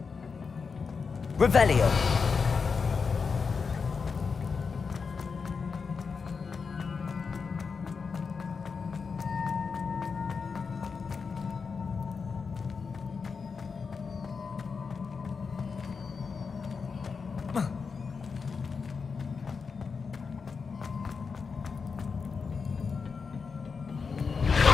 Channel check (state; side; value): quieter; right; 5.3 dB